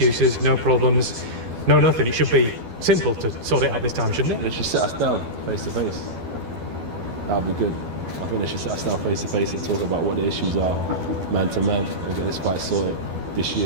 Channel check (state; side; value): late; left; 12 ms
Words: no problems, no nothing. It should be simple to sort it out this time, shouldn't it? They should sit us down face to face. That would be good. I think they should sit us down face to face and talk about what the issues are, man to man, and get this fight sorted this